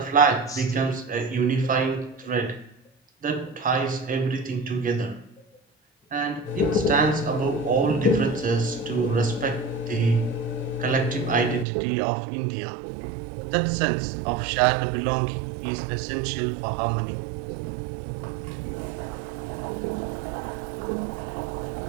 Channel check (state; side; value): drops out; left; at 11.7 s